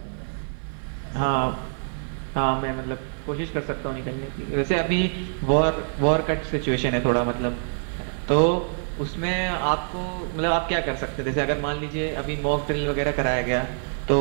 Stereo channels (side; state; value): left; silent; digital silence